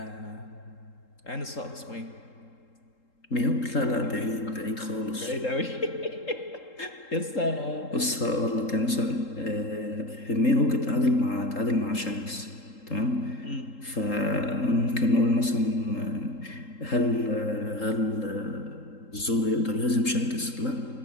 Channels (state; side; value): late; right; 3.8 ms